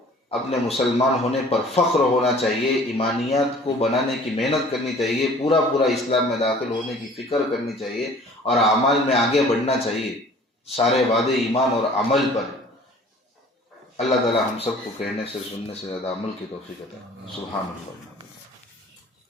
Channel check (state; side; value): normal; both; correlation 0.50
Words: اپنے مسلمان ہونے پر فخر ہونا چاہیے، ایمانیات کو بنانے کی محنت کرنی چاہیے، پورا اسلام میں داخل ہونے کی فکر کرنی چاہیے اور اعمال میں آگے بڑھنا چاہیے. سارے وعدے ایمان اور عمل پر. اللہ تعالی ہم سب کو کہنے سے سننے سے زیادہ عمل کی توفیق عطا. سبحان اللہ.